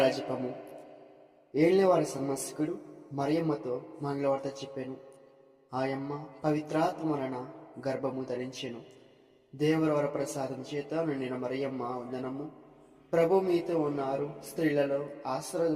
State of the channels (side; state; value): both; identical; correlation 1.00